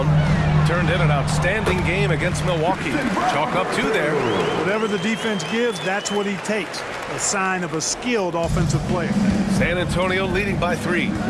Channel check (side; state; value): both; identical; correlation 1.00